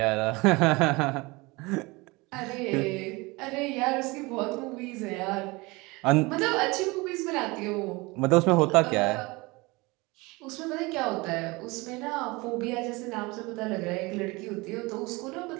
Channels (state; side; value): quieter; left; 24.1 dB